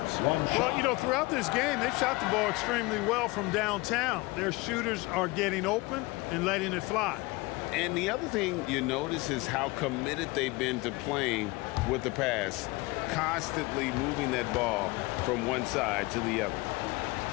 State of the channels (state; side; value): quieter; right; 23.2 dB